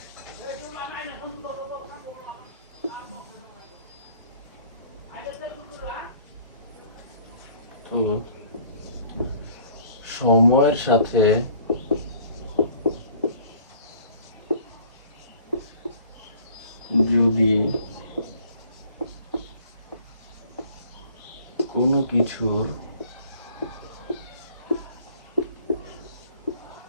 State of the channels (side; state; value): both; inverted; correlation -0.54